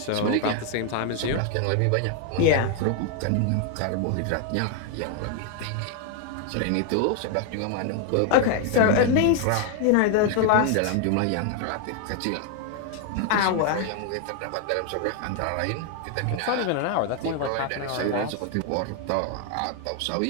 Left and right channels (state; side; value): different; both; correlation 0.00